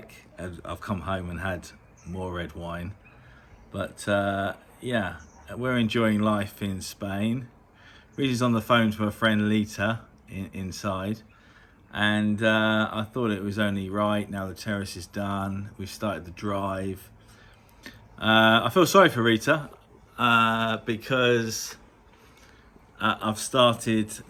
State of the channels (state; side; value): identical; both; correlation 1.00